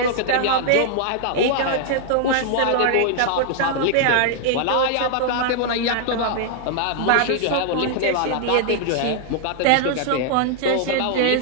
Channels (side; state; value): both; different; correlation -0.01